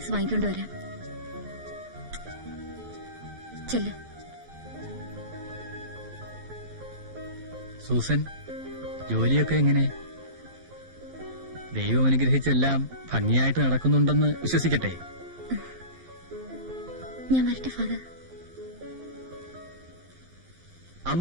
വാങ്ങിക്കൊണ്ട് വരാം. ചെല്ല്. സൂസൻ, ജോലിയൊക്കെ എങ്ങനെ? ദൈവം അനുഗ്രഹിച്ചെല്ലാം ഭംഗിയായിട്ട് നടക്കുന്നുണ്ടെന്ന് വിശ്വസിക്കട്ടെ. ഞാൻ വരട്ടെ ഫാദർ.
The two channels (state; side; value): late; left; 12 ms